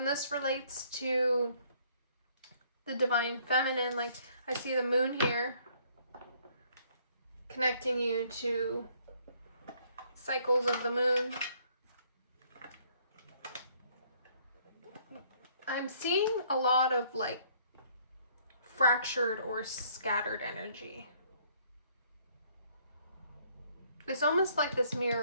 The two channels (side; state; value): both; inverted; correlation -0.64